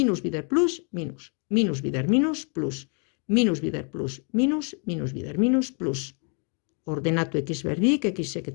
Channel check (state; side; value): quieter; right; 38.7 dB